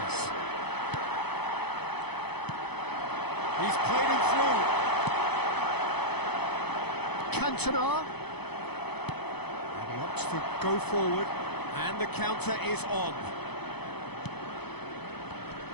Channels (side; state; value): right; late; 0.98 ms